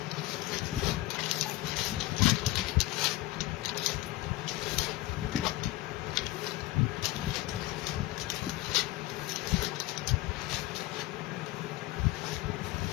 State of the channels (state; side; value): quieter; right; 17.9 dB